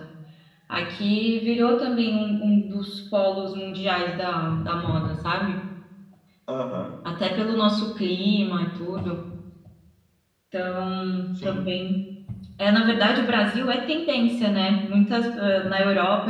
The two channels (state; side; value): identical; both; correlation 1.00